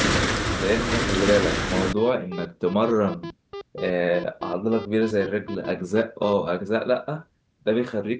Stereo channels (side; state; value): both; identical; correlation 1.00